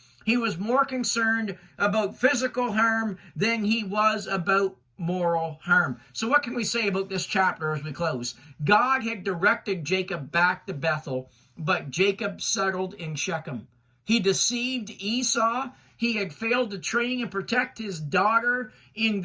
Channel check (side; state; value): both; identical; correlation 1.00